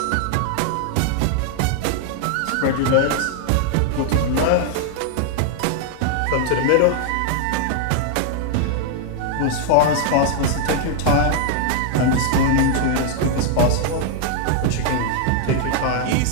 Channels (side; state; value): both; different; correlation 0.00